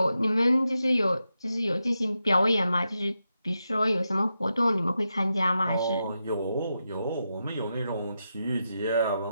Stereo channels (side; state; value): both; inverted; correlation -0.87